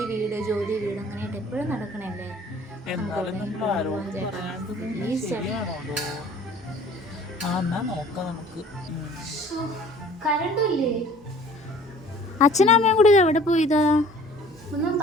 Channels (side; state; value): both; normal; correlation 0.50